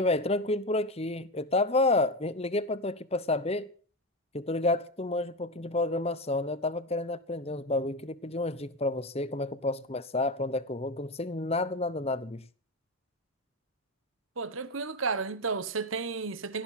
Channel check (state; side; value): normal; both; correlation 0.16